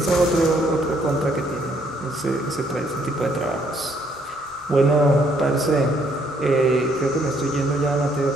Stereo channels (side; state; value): both; normal; correlation 0.68